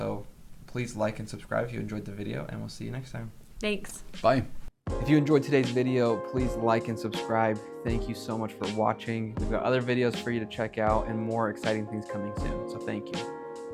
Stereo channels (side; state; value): both; identical; correlation 1.00